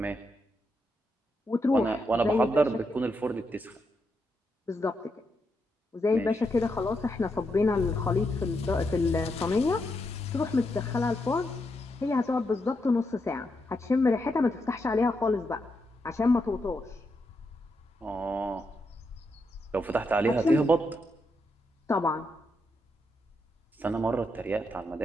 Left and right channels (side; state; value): both; normal; correlation 0.82